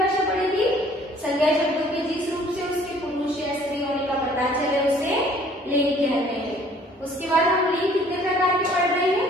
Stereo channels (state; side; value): normal; both; correlation 0.56